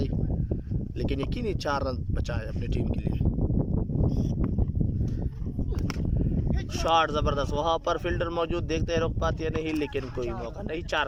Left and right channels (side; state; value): both; identical; correlation 1.00